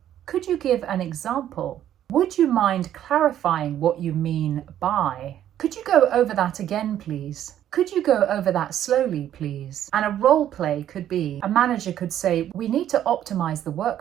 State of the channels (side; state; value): left; quieter; 11.1 dB